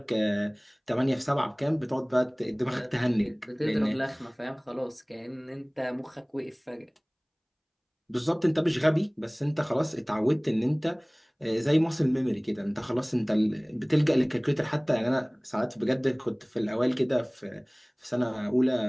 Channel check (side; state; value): both; identical; correlation 1.00